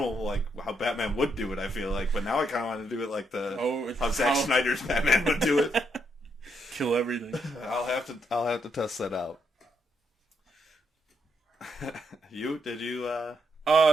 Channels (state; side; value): normal; both; correlation 0.78